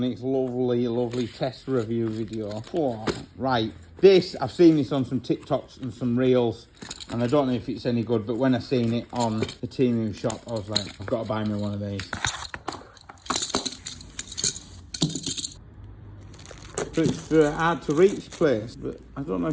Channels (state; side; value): identical; both; correlation 1.00